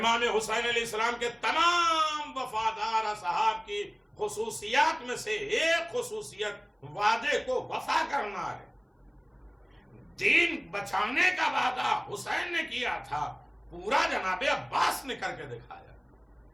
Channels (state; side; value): identical; both; correlation 1.00